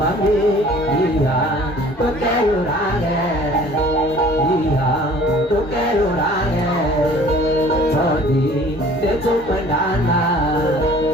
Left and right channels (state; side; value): normal; both; correlation 0.51